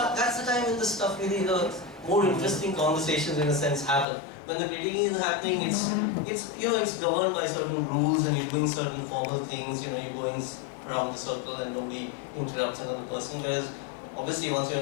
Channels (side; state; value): right; drops out; at 4.0 s